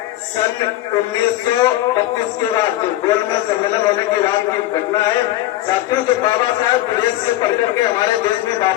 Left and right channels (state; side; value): quieter; right; 15.3 dB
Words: सन 1932 के बाद गोलमेज सम्मेलन होने के बाद की घटना है। साथियों, जब बाबा साहब विदेश से पढ़ करके हमारे देश में